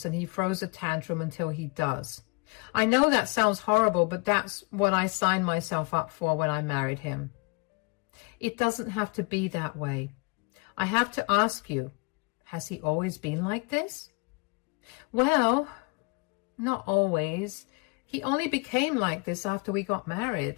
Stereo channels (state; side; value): quieter; right; 30.6 dB